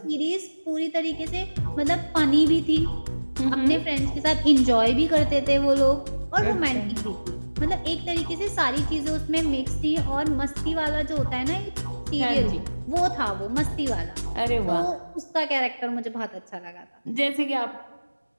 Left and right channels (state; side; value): inverted; both; correlation -1.00